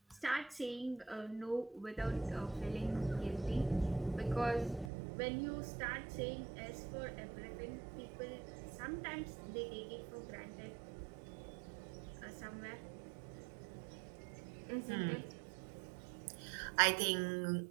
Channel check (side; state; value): left; drops out; at 4.9 s